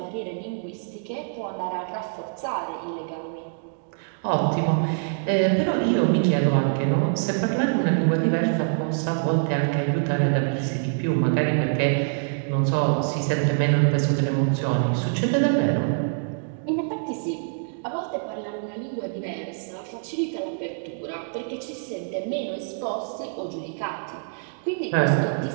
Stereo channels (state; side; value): silent; left; digital silence